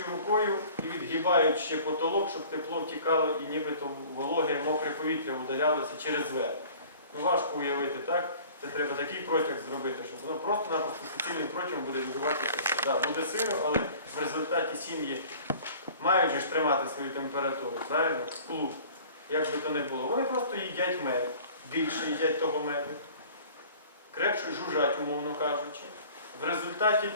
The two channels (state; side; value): inverted; both; correlation -0.47